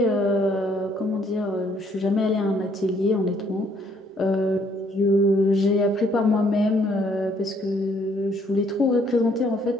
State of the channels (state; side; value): normal; both; correlation 0.66